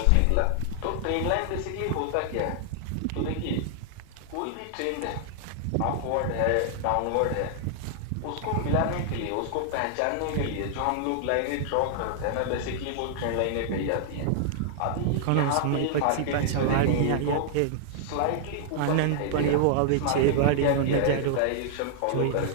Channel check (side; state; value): both; different; correlation -0.01